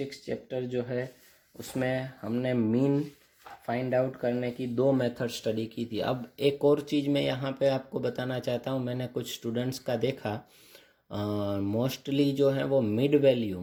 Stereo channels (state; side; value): identical; both; correlation 1.00